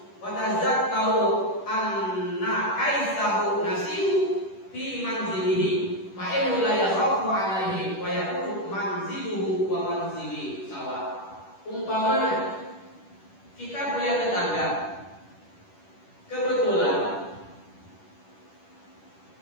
wa tazakkau anna kaisahu nasihu fi manzilihi fa innahu la yakhafu alaihi wa yakunu manziluhu wa manzili sawa. Umpamanya kita punya tetangga, kebetulan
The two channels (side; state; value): right; late; 10 ms